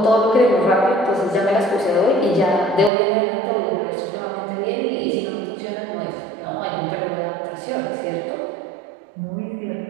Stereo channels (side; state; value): left; drops out; at 2.9 s